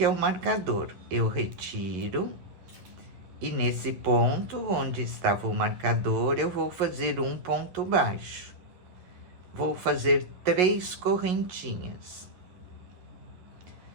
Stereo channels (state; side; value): late; left; 11 ms